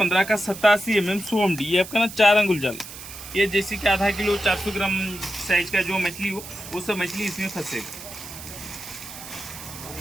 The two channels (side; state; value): right; noise; hiss, 13 dB below the sound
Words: का 87 100 MD, ये आपका ना 4 अंगुल जाल। ये जैसे कि आधा किलो 400 ग्राम साइज का जो मछली हो वो सब मछली इसमें फंसेगा।